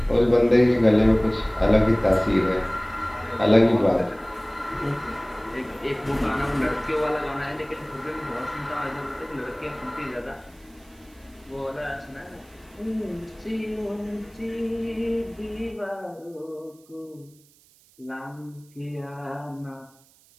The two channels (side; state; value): right; noise; hiss, 29 dB below the sound